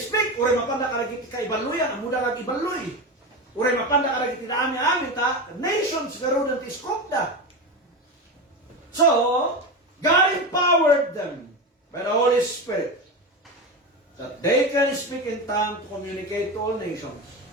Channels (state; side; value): normal; both; correlation 0.20